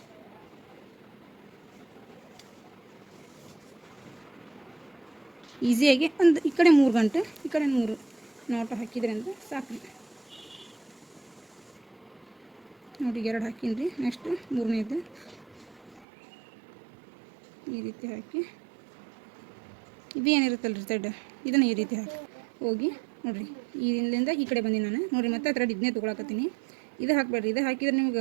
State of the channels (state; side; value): drops out; left; at 16.1 s